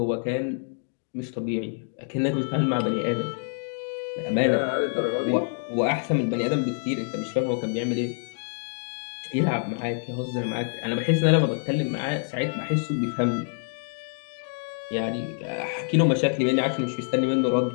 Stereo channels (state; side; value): silent; right; digital silence